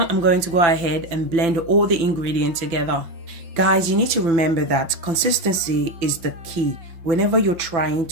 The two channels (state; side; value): late; left; 5.9 ms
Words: I'm going to go ahead and blend all the ingredients together. Guys, you need to remember that consistency is the key whenever you're trying